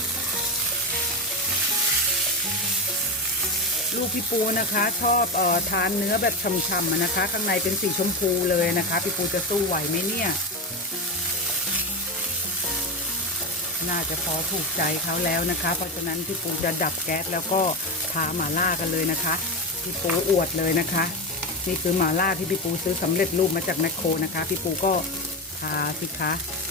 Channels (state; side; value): normal; both; correlation 0.16